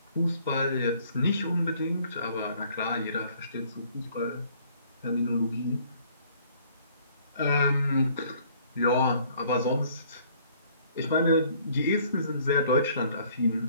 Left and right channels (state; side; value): inverted; both; correlation -0.59